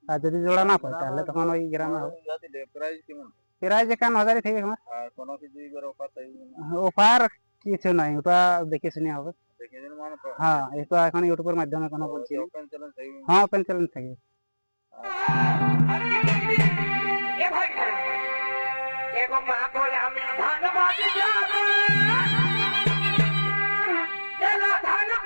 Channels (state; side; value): inverted; both; correlation -1.00